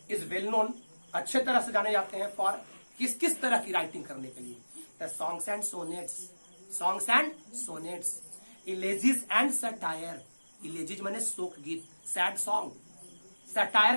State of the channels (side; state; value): both; inverted; correlation -1.00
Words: is well known, अच्छे तरह से जाने जाते हैं फॉर किस किस तरह की राइटिंग करने के लिए। The songs and sonnets, songs and sonnets, elegies and satire. Elegies माने शोक गीत, सैड सॉन्ग। सटायर